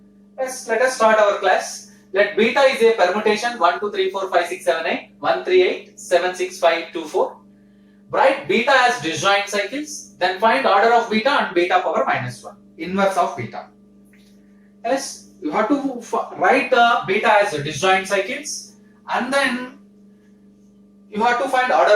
Let us start our class. Let beta is a permutation 1, 2, 3, 4, 5, 6, 7, 8, 1, 3, 8, 7, 6, 5, 2, 4. Write beta as disjoint cycles. Then find order of beta and beta power minus 1. Inverse of beta. Yes, you have to write beta as disjoint cycles. And then you have to find order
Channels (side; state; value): both; identical; correlation 1.00